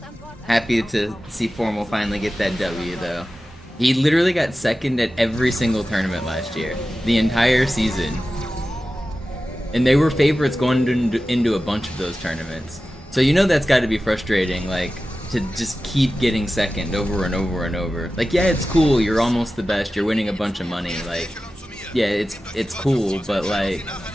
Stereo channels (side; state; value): both; normal; correlation 0.94